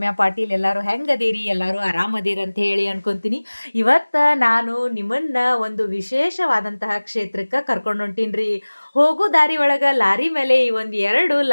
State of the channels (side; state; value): both; inverted; correlation -1.00